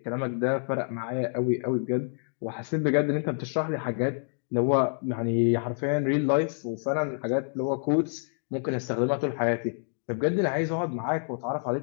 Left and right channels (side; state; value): right; silent; digital silence